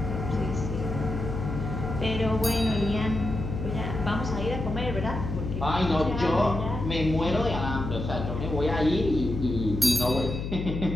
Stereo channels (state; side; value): noise; left; hum, 4 dB below the sound